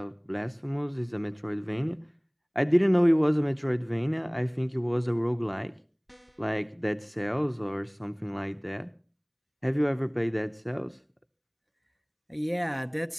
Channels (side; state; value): both; identical; correlation 1.00